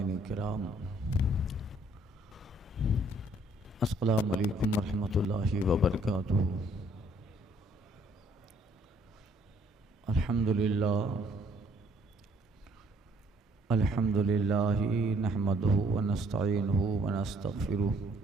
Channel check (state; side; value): normal; both; correlation 0.63